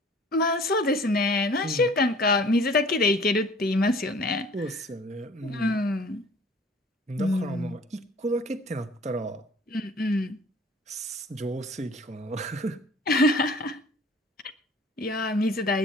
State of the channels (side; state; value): both; normal; correlation 0.50